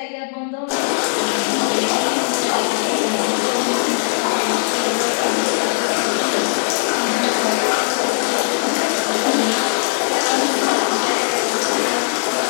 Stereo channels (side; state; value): right; silent; 67 dB below the other